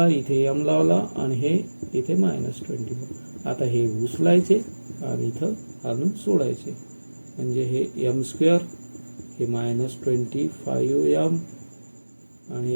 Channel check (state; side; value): inverted; both; correlation -1.00